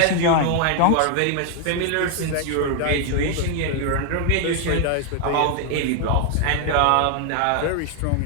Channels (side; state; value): both; different; correlation 0.00